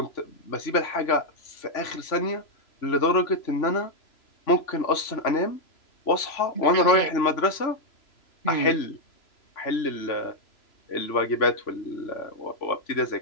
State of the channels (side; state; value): right; late; 3.0 ms